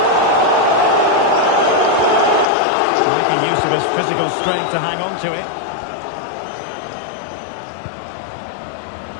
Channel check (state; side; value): drops out; right; at 2.5 s